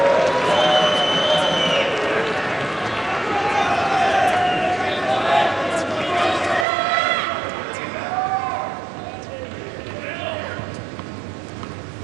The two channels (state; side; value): drops out; left; at 6.7 s